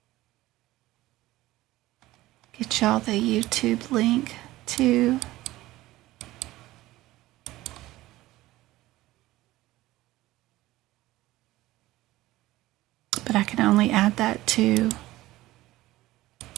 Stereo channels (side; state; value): left; quieter; 17.1 dB